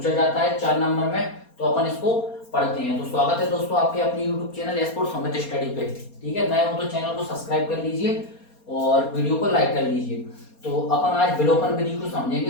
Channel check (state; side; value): late; right; 4.3 ms